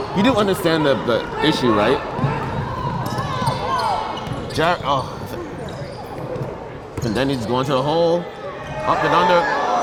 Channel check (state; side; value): identical; both; correlation 1.00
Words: you do understand the issue, right? And then he's going to the hole, up and under.